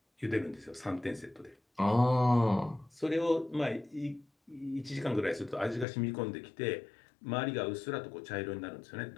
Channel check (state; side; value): drops out; right; at 5.9 s